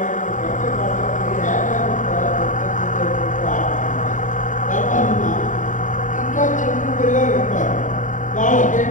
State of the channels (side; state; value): right; late; 0.37 ms